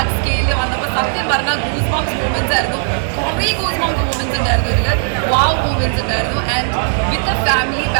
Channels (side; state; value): left; silent; 67 dB below the other